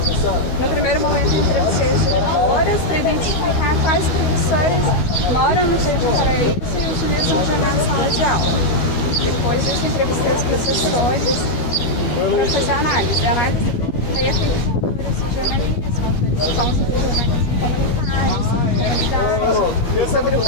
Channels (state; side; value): late; right; 12 ms